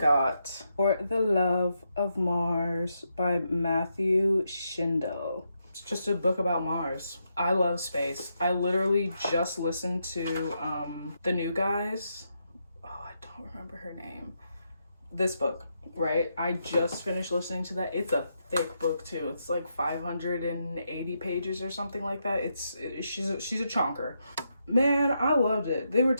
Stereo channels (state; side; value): inverted; both; correlation -0.82